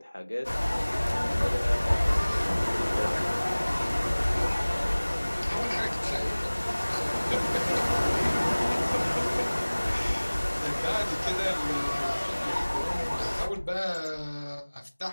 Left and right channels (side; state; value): both; inverted; correlation -1.00